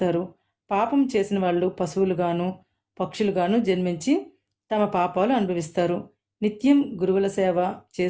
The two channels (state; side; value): identical; both; correlation 1.00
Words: పాపం చేసిన వాళ్ళు పశువులుగాను పక్షులుగాను జన్మించి తమ పాపాలు అనుభవిస్తారు. నిత్యం గురువుల సేవ